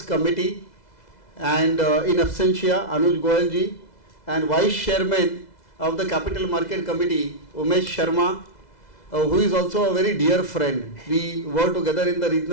Committee and in absentia Anuj Goyal ji, and Vice Chairman of the Capital Market Committee Umesh Sharma, who is also a very dear friend. We work together in the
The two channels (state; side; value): late; right; 2.0 ms